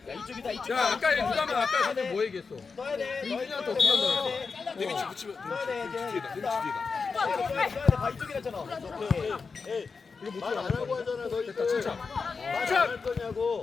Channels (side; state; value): right; quieter; 4.9 dB